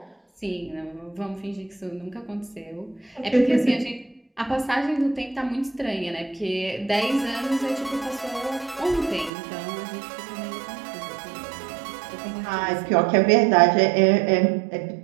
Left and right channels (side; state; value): left; drops out; at 9.3 s